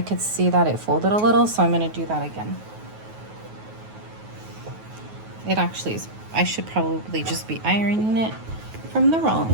could see that it folded a little, so I'm going to do that again. It actually is, I should probably just be ironing it from the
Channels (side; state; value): left; late; 9.4 ms